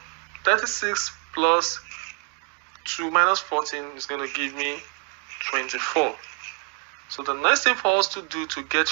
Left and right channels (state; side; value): quieter; left; 37.8 dB